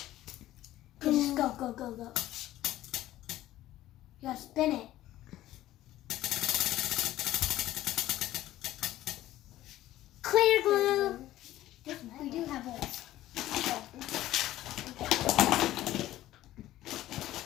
Just go. You gotta spin it. Clear glue. We do have holes.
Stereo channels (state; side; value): quieter; right; 14.5 dB